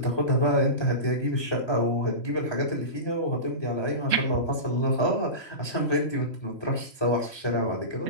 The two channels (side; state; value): right; late; 3.0 ms